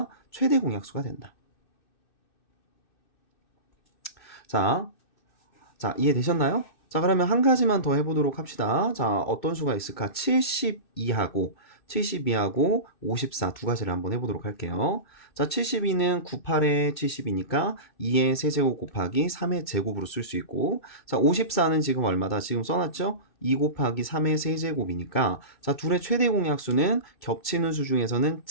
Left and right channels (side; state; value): right; late; 2.6 ms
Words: 최대 공약수가 된다. 자, 이해되셨나요? 자, 그러면 한 가지만 더 해보도록 합시다. 자, 어떤 수가 있을까? 72하고 72하고 54 두 가지를 한번 해보도록 할게요. 자, 72는 98에 70이니까 2의 세제곱 곱하기 3의 제곱으로 쓸 수 있고, 자, 54는 지금 얼마다? 지금 써놨죠? 2 곱하기 3의 세제곱이니까, 자, 둘의 최대 공약수는 겹치는 수 중에서는